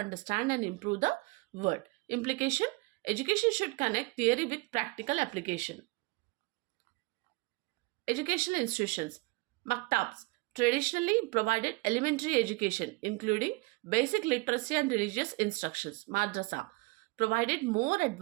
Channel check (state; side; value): quieter; left; 25.2 dB